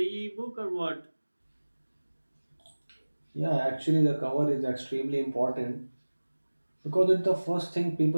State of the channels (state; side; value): inverted; both; correlation -1.00